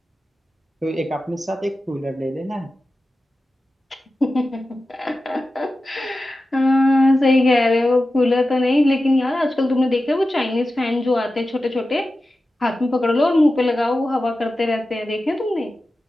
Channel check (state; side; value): normal; both; correlation 0.93